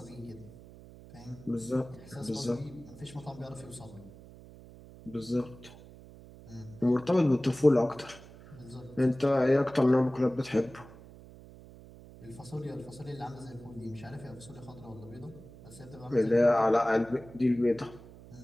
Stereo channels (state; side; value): noise; right; hum, 19 dB below the sound